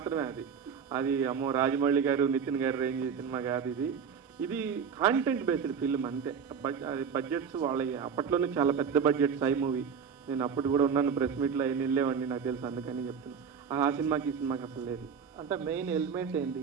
అది అమ్మో రాజమౌళి గారు నితిన్ గారు రేంజ్ సినిమా కాదు ఇది కాంటెంట్ బేస్డ్ ఫిల్మ్ అంతే. బడ్జెట్స్ వాళ్ళ అప్పట్లోనే చాలా పెద్ద బడ్జెట్ సై మూవీ. నేను అప్పుడు కూడా ఉన్నాను, ప్రెస్ మీట్లో అయిన వెళ్ళేవాడిని, నాకు తెలుసు, అందుకని చెప్తున్నాను. ఆ సినిమాకి ఈ సినిమాకి అసలు లేదు. అంటే మెయిన్ ఎలిమెంట్ ఏంటి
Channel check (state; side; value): quieter; left; 6.7 dB